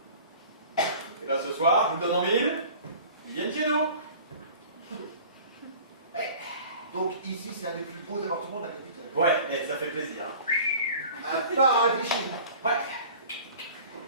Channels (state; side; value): inverted; both; correlation -0.44